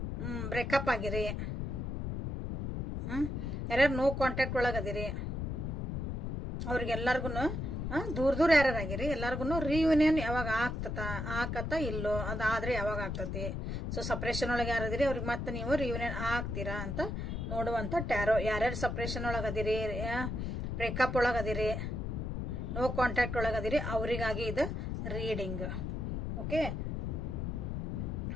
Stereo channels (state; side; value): noise; left; rumble, 3 dB below the sound